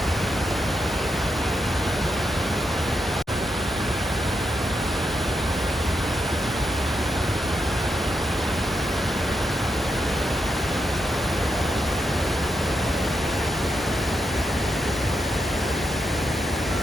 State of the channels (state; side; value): normal; both; correlation 0.83